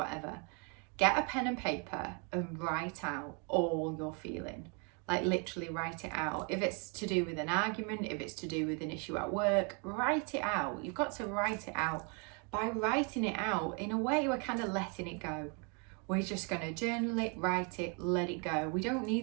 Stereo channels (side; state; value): left; quieter; 35.4 dB